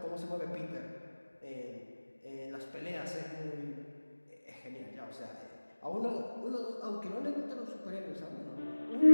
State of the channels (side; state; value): both; inverted; correlation -1.00